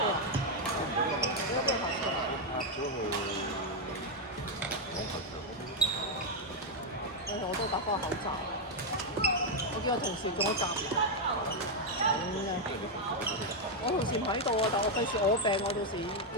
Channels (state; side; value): normal; both; correlation 0.01